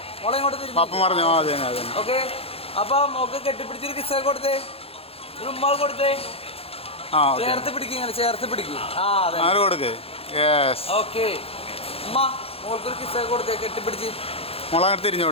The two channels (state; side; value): late; right; 0.28 ms